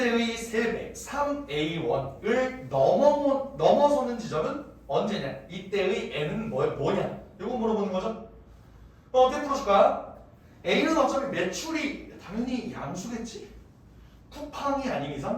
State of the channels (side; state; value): both; identical; correlation 1.00